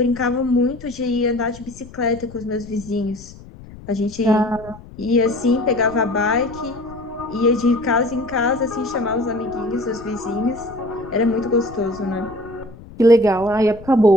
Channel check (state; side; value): noise; left; rumble, 18 dB below the sound